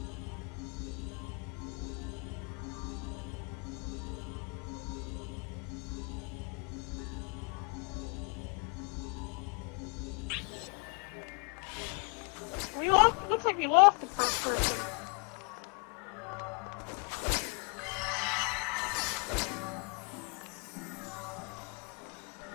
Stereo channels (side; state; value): right; quieter; 32.4 dB